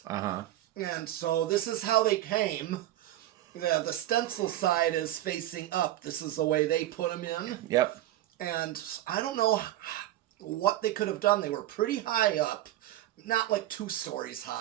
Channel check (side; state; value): left; quieter; 14.2 dB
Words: Uh-huh. And so this is how they came. The stencil side is facing up. This is the way they put them in. Yep. And I don't know what they could have done. They were pretty high up. Not like 2 stories